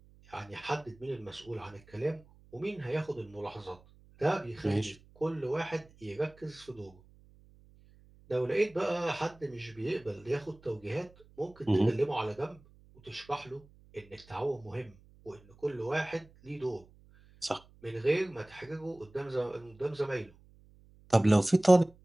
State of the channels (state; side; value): noise; right; hum, 26 dB below the sound